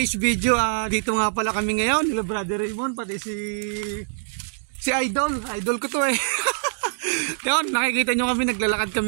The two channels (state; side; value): silent; left; digital silence